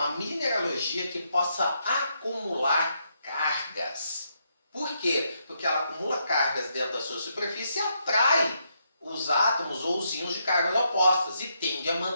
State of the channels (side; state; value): both; inverted; correlation -0.78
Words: mineralogia que possa acumular cargas. Por quê? Porque ela acumula cargas dentro da sua superfície e atrai os átomos ou os íons de cargas opostas e tende a